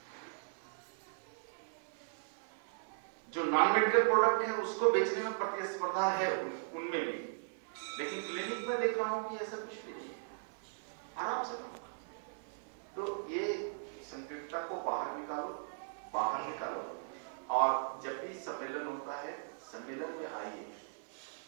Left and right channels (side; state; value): left; silent; 52 dB below the other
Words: जो नॉन मेडिकल प्रोडक्ट है उसको बेचने में प्रतिस्पर्धा है उनमें भी, लेकिन क्लिनिक में देख रहा हूं कि ऐसा कुछ भी नहीं, आराम से काम। तो ये संकीर्णता को बाहर निकालो, और जब भी सम्मेलन होता है, सम्मेलन में आइए,